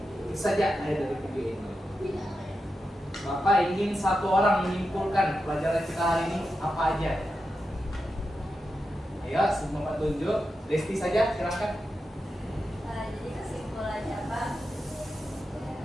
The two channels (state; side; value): normal; both; correlation 0.89